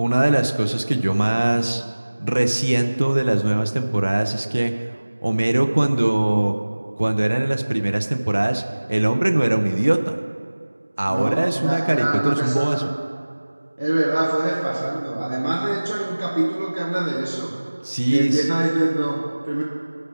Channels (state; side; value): inverted; both; correlation -1.00